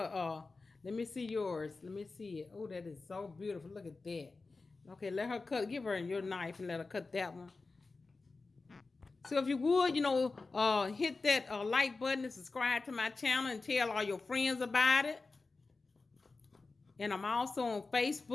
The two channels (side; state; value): right; quieter; 3.8 dB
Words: let me see yours. Let me see it. Oh, that is so beautiful. Look at that. Okay, let her cut. Give her your knife and let her cut that one. So if you would, hit that like button and subscribe to my channel and tell all your friends about it. And I'm also on